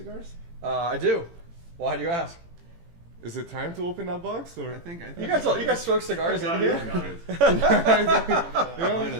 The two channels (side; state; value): left; late; 18 ms